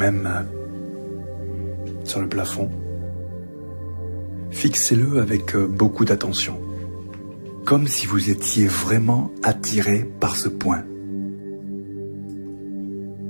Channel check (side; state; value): both; inverted; correlation -1.00